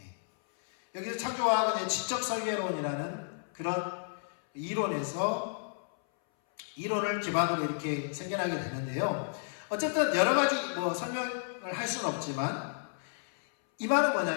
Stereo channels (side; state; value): right; silent; 57 dB below the other